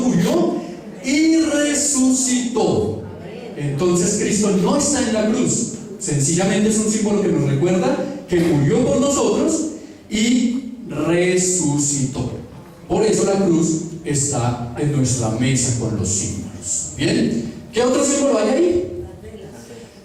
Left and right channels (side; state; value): both; identical; correlation 1.00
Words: y resucitó. Entonces Cristo no está en la cruz. Sencillamente es un símbolo que nos recuerda que murió por nosotros y resucitó. Por eso la cruz está en nuestra mesa con los símbolos. ¿Bien? ¿Qué otro símbolo hay ahí?